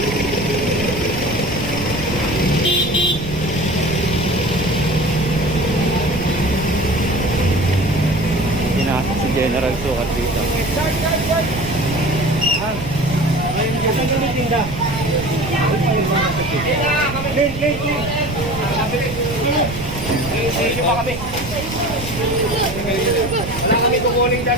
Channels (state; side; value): noise; right; rumble, 9 dB below the sound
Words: Pinasok si General Sukat dito. Wala kami kukuling